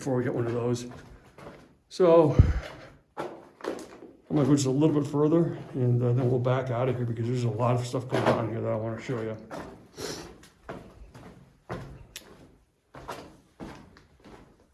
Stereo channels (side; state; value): both; identical; correlation 1.00